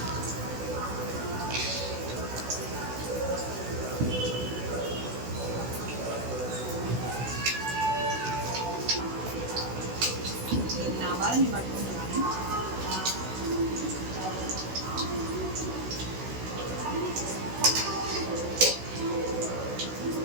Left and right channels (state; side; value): late; left; 16 ms